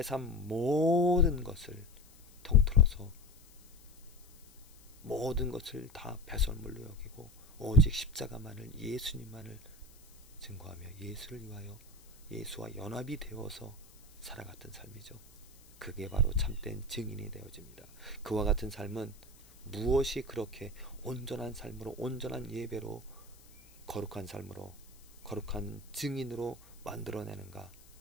삶 모든 것을 통틀어서 모든 것을 다 배설물로 여기고 오직 십자가만을, 예수님만을 증거하며 예수를 위하여 예수와 연합이 되어서 살아갔던 삶이죠. 그게 바로 참된 증인이 되어집니다. 그와 같은 삶은 무엇이 그렇게 온전한 삶으로, 온전한 예배로, 거룩한 삶으로, 거룩한 증인으로 만들어내는가?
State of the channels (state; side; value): noise; left; hiss, 25 dB below the sound